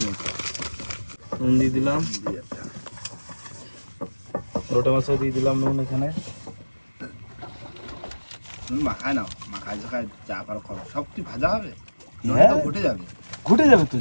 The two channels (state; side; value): inverted; both; correlation -1.00